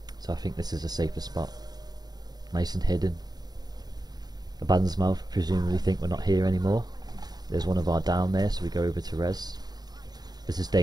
So I think this is a safer spot. Nice and hidden. Abaddon's Mouth presumably think we're not here anymore. There's one of our down there, so we go over to res. This is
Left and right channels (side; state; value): left; late; 0.19 ms